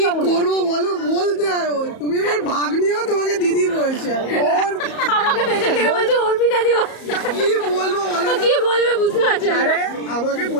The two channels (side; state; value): right; late; 34 ms